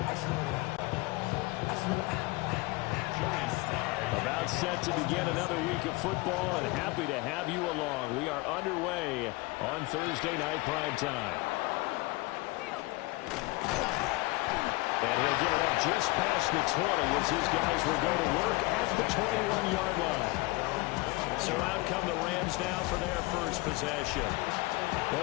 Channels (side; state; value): right; quieter; 23.0 dB